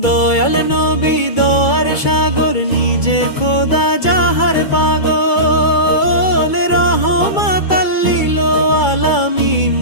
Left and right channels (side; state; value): right; late; 2.3 ms